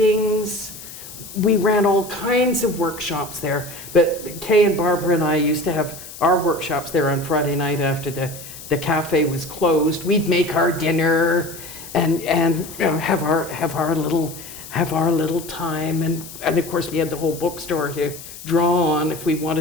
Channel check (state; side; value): noise; left; hiss, 14 dB below the sound